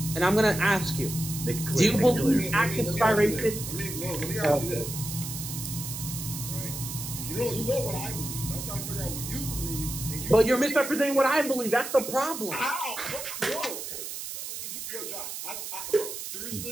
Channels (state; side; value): noise; right; hiss, 7 dB below the sound